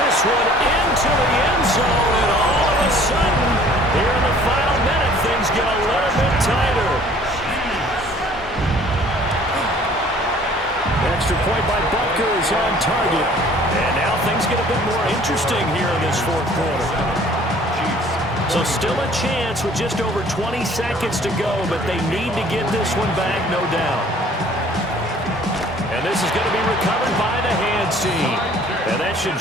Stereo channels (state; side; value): normal; both; correlation 0.54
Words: one into the end zone, and all of a sudden, here in the final minute, things get a little bit tighter. Extra point by Butker is on target. And now things get a bit more interesting here in this 4th quarter. So still a chance with just over 20 seconds to go, but they need to get this one back, no doubt. And this is going to be recovered by the hands team. And that should